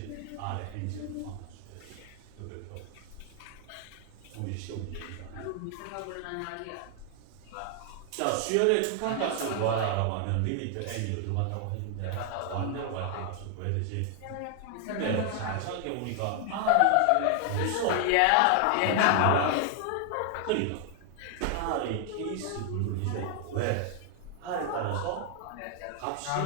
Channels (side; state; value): both; different; correlation 0.00